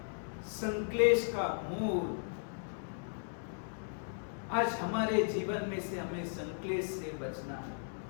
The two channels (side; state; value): right; silent; digital silence